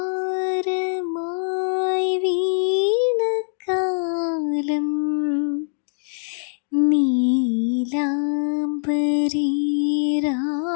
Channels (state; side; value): silent; right; digital silence